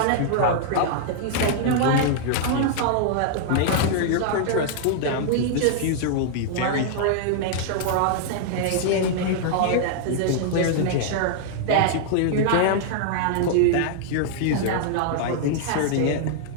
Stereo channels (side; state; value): both; different; correlation -0.01